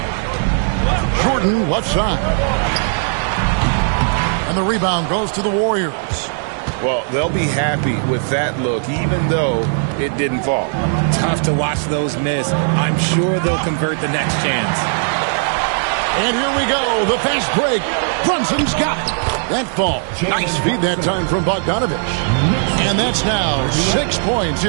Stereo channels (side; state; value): left; silent; 61 dB below the other